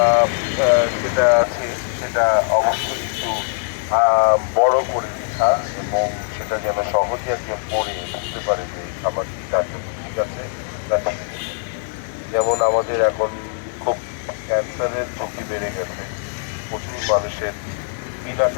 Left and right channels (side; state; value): right; silent; 65 dB below the other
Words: যেটা আছে সেটা অবশ্যই একটু বড় করে লেখা, এবং সেটা যেন সহজে একজন পড়ে বুঝতে পারে যে এই খাবারটি তার জন্য ঠিক আছে না ঠিক নেই। যেমন আমাদের এখন খুব ক্যান্সারের ঝুঁকি বেড়ে গেছে, প্রচুর মানুষের বিনা